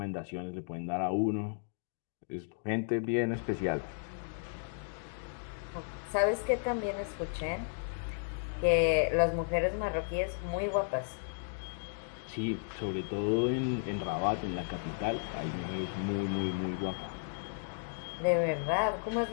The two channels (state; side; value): silent; right; digital silence